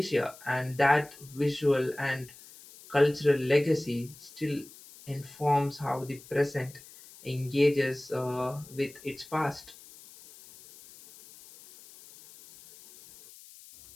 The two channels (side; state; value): left; noise; hiss, 20 dB below the sound